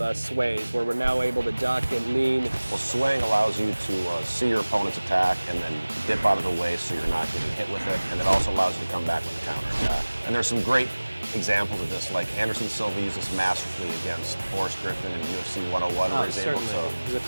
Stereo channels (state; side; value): inverted; both; correlation -1.00